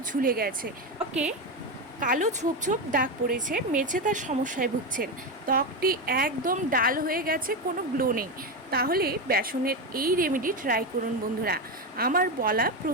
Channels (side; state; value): both; normal; correlation 0.13